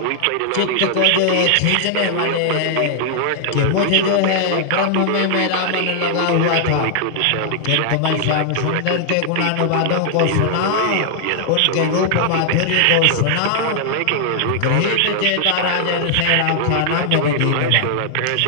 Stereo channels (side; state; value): both; different; correlation 0.00